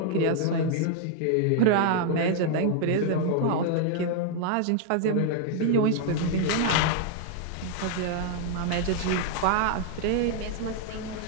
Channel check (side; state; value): both; different; correlation 0.00